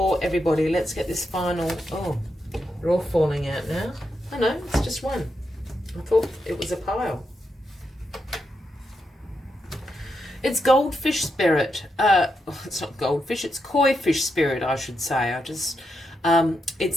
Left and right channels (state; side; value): normal; both; correlation 0.84